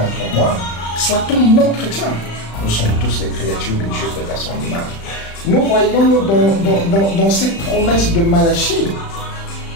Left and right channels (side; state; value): right; late; 35 ms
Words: pour moi, soit-on non chrétien. Nous sommes tous les créatures de Dieu faites à son image. Nous voyons dans cette promesse de Malachie